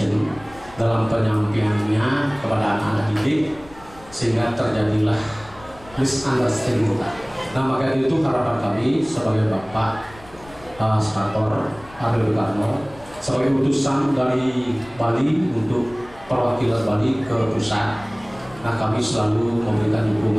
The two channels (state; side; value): noise; left; rumble, 22 dB below the sound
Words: dalam penyampaiannya kepada anak-anak didik, sehingga terjadilah misunderstanding. Nah, maka itu harapan kami sebagai Bapak Senator Aryo Karno sebagai utusan dari Bali untuk perwakilan Bali ke pusat. Nah, kami selalu memberikan